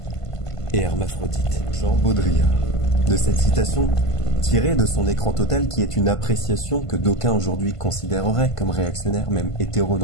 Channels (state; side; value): late; right; 1.5 ms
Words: et hermaphrodites. Jean Baudrillard. De cette citation, tirée de son écran total qui est une appréciation que d'aucuns aujourd'hui considéreraient comme réactionnaire, même